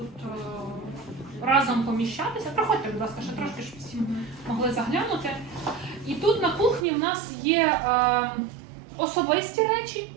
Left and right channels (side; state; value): left; drops out; at 6.9 s